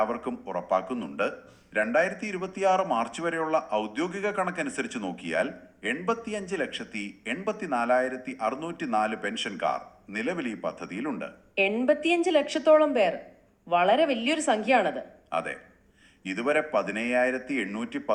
ഉറപ്പാക്കുന്നുണ്ട്. 2026 മാർച്ച് വരെയുള്ള ഔദ്യോഗിക കണക്കനുസരിച്ച് നോക്കിയാൽ 85,84,604 പെൻഷൻകാർ നിലവിൽ ഈ പദ്ധതിയിലുണ്ട്. 85 ലക്ഷത്തോളം പേർ, വളരെ വലിയൊരു സംഖ്യയാണത്. അതെ, ഇതുവരെ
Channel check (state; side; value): identical; both; correlation 1.00